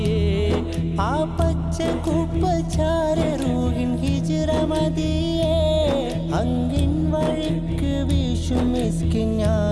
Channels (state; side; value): identical; both; correlation 1.00